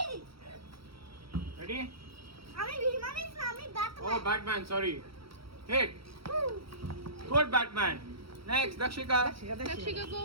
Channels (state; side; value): late; left; 0.75 ms